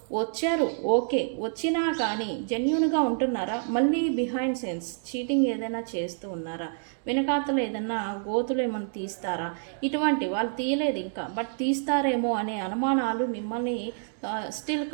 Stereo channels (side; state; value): left; silent; digital silence